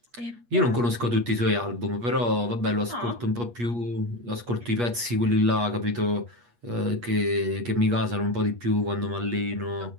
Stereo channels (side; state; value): left; late; 8.4 ms